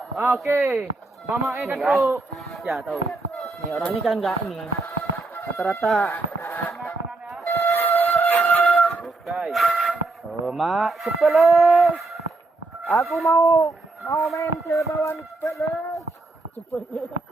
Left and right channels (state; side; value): quieter; left; 3.3 dB